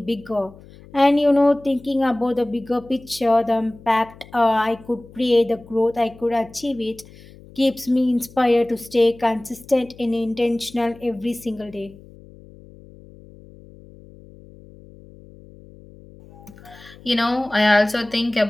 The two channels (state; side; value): noise; left; hum, 22 dB below the sound